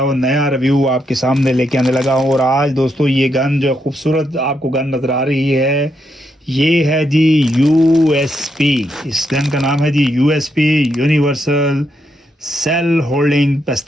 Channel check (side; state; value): both; normal; correlation 0.80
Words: वो नया रिव्यू आपके सामने लेके आने लगा हूँ। और आज दोस्तों ये गन जो खूबसूरत आपको गन नज़र आ रही है, ये है जी यूएसपी। इस गन का नाम है जी यूएसपी, यूनिवर्सल सेल होल्डिंग